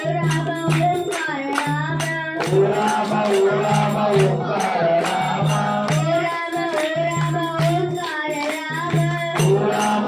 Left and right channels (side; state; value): both; identical; correlation 1.00